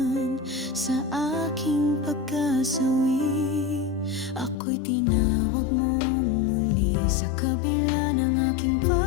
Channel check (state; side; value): drops out; right; at 4.5 s